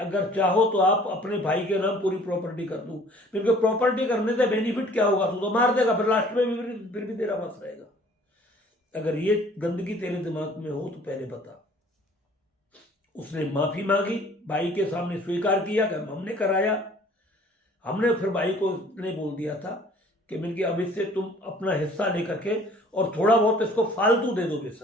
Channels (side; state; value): both; normal; correlation 0.53